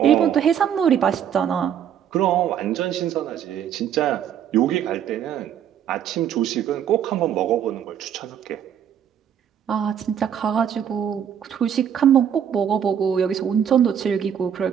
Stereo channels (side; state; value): left; quieter; 9.0 dB